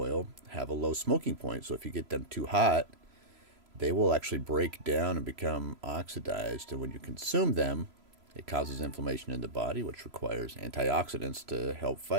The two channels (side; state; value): left; late; 3.0 ms